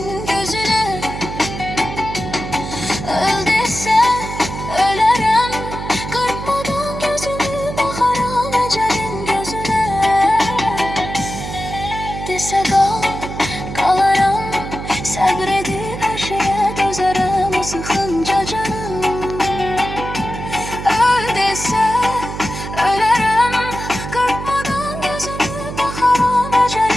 gözüne. Öl dese ölerim, kırpmadan gözümü bakaram ecelin gözüne. Dese kal, kalarım, sabredip her şeye dözerim o sıkınca canım. Öl dese ölerim, kırpmadan gözümü bakaram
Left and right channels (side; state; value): right; noise; hum, 8 dB below the sound